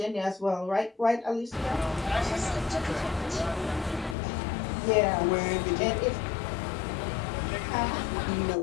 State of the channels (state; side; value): drops out; right; at 4.2 s